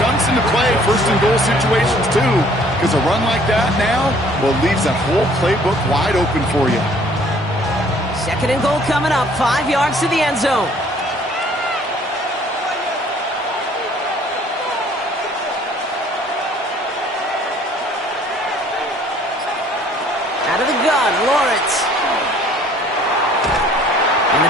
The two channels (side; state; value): both; normal; correlation 0.57